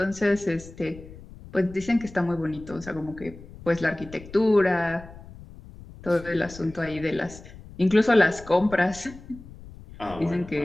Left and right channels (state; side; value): noise; left; rumble, 17 dB below the sound